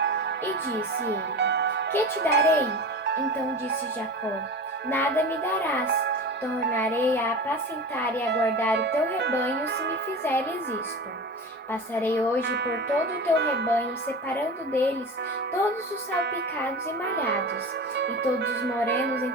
E disse ele: Que te darei? Então disse Jacó: Nada me darás. Tornarei a apacentar e a guardar o teu rebanho se me fizeres isto. Passarei hoje por todo o teu rebanho, separando deles todos os salpicados e malhados, e todos os morenos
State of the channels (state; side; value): normal; both; correlation 0.30